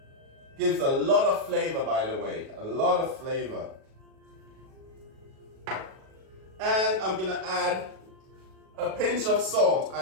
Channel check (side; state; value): left; late; 37 ms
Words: Gives a lot of flavor, by the way, a lot of flavor. And I'm going to add a pinch of salt.